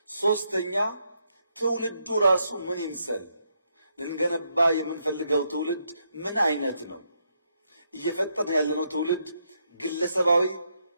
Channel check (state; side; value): inverted; both; correlation -0.78